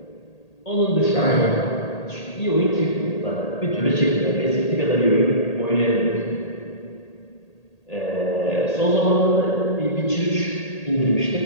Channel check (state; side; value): late; right; 1.8 ms